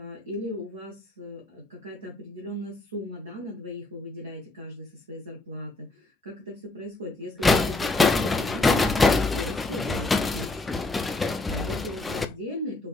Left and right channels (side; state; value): right; quieter; 3.0 dB